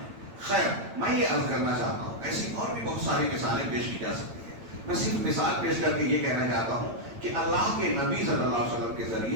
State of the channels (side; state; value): left; late; 9.0 ms